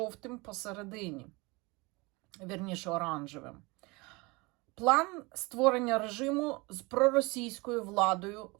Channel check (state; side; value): quieter; left; 25.5 dB